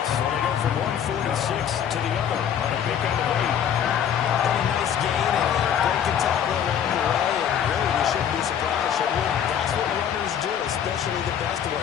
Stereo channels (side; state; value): right; quieter; 8.9 dB